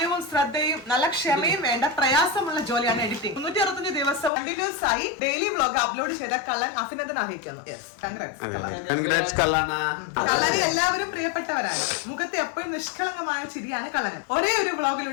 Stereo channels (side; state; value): right; drops out; at 4.3 s